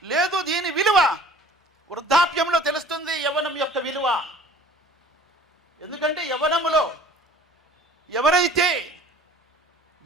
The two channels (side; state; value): both; normal; correlation 0.49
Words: లేదు, దీని విలువ వృద్ధాప్యంలో తెలుస్తుంది యవ్వనం యొక్క విలువ. ఎందుకంటే యవ్వనములో ఎవరైతే